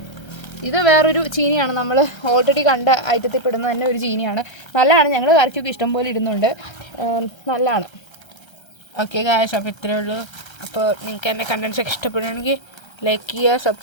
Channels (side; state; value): right; late; 1.3 ms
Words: ഇത് വേറൊരു ചീനിയാണ്. നമ്മൾ ഓൾറെഡി കണ്ട ഐറ്റത്തിൽ പെടുന്ന തന്നെ ഒരു ചീനിയാണ്. നല്ലതാണ്. ഞങ്ങൾ കറിക്കൊക്കെ ഇഷ്ടംപോലെ ഇടുന്നുണ്ട്. നല്ലതാണ്. ഓക്കെ ഗായ്സ്, അപ്പോൾ ഇത്രയേ ഉള്ളൂ. അപ്പോൾ നിങ്ങൾക്ക് എൻ്റെ കണ്ടൻസൊക്കെ ഇഷ്ടപ്പെടുകയാണെങ്കിൽ ലൈക്ക് ചെയ്യുക,